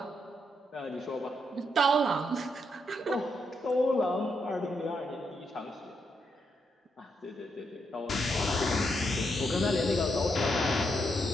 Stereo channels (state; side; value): normal; both; correlation 0.80